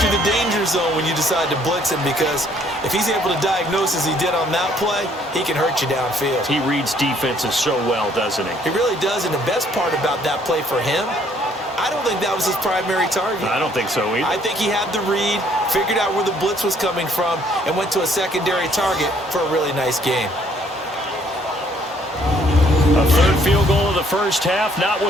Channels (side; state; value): both; normal; correlation 0.64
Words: the danger zone when you decide to blitz him, because if he's able to diagnose as he did on that play, he can hurt you downfield. He reads defenses so well, doesn't he? He really does, and the best part about that play for him, I don't think that was his primary target. I don't think so either. I think he had the read, figured out where the blitz was coming from, and went to a secondary target for a really nice game. A 3rd field goal of the first half, not